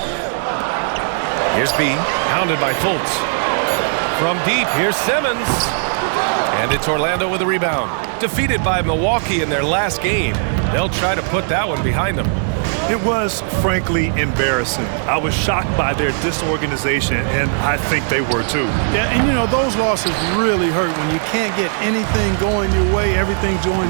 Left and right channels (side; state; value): left; silent; 66 dB below the other